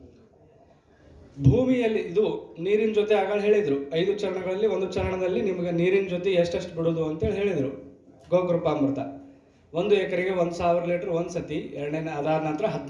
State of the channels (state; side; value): identical; both; correlation 1.00